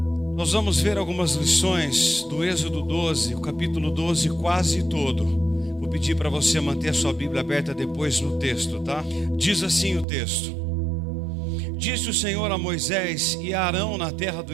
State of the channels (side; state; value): left; drops out; at 10.1 s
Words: ver algumas lições do Êxodo 12, o capítulo 12 quase todo. Vou pedir para você manter a sua Bíblia aberta depois no texto, tá? Diz assim o texto: Disse o Senhor a Moisés e a Arão na terra do